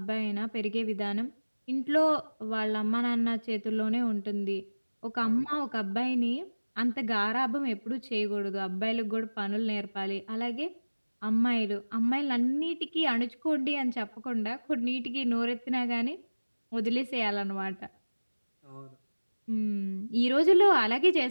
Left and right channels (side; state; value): both; inverted; correlation -1.00